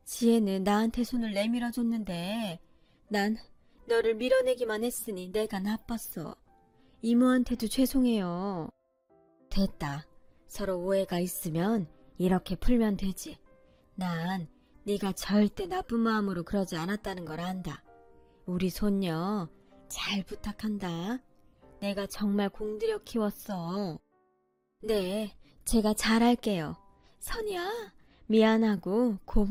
지혜는 나한테 손을 내밀어줬는데 난 너를 밀어내기만 했으니 내가 나빴어. 이모한테도 죄송해요. 됐다. 서로 오해가 있으면 이렇게 풀면 되지. 난 네가 절대 나쁜 마음으로 그러지 않았다는 걸 안다. 우리 손녀 잘 부탁한다. 내가 정말 공들여 키웠어. 네, 제가 잘할게요. 선이야, 미안하고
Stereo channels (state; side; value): identical; both; correlation 1.00